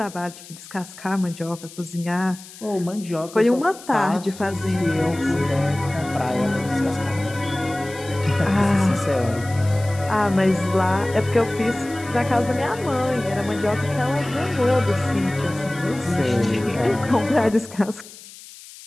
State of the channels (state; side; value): noise; left; hiss, 18 dB below the sound